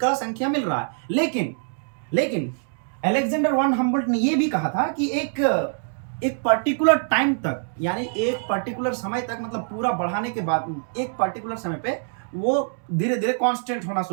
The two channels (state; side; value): silent; left; 62 dB below the other